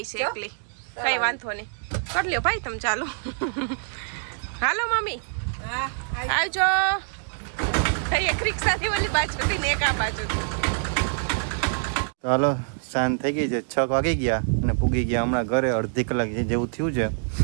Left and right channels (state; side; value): silent; left; digital silence